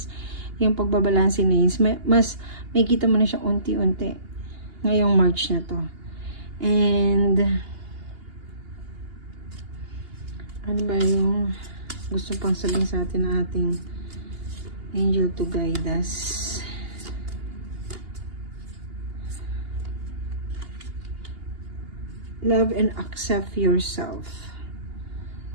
yung pagbabalansin na yun, mas may kita mo na siya unti-unti ngayong March na to. And ano ba yung gusto pang sabihin sa atin na ating angel to guide us? love and accept yourself.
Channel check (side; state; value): left; late; 2.8 ms